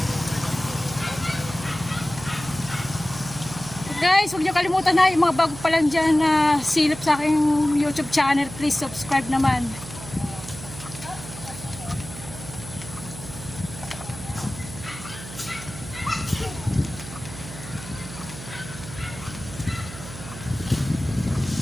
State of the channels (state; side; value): noise; right; hum, 13 dB below the sound